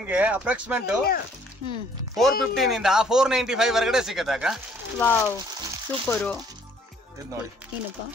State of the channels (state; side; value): normal; both; correlation 0.61